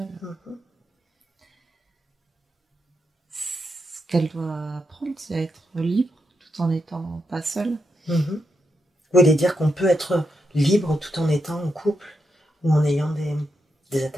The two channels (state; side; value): normal; both; correlation 0.84